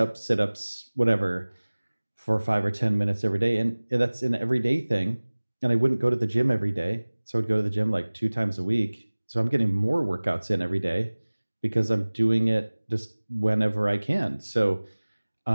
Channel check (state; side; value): inverted; both; correlation -1.00